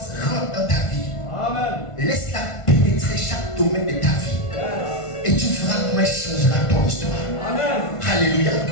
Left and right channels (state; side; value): late; right; 1.5 ms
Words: rentre dans ta vie. Amen. Laisse-la pénétrer chaque domaine de ta vie. Et tu verras comment elle changera ton histoire. Amen. Alléluia.